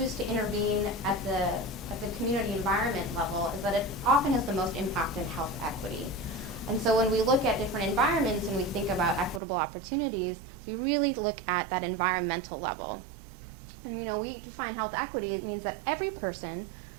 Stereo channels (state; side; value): drops out; left; at 9.4 s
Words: to intervene at the community environment level is that it often has the most impact in health equity. And so when we look at different environments and we think about equitable opportunities, we really look at that environmental level. And we find health equity, it means that every person,